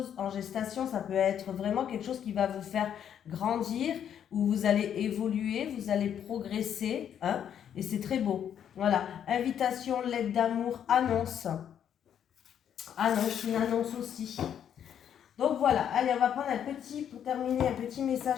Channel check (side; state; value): right; quieter; 9.1 dB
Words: en gestation, ça peut être vraiment quelque chose qui va vous faire grandir, où vous allez évoluer, vous allez progresser, hein, et c'est très beau. Voilà. Invitation, lettre d'amour, annonce. Annonce, une annonce aussi. Donc voilà, allez, on va prendre pour terminer, un petit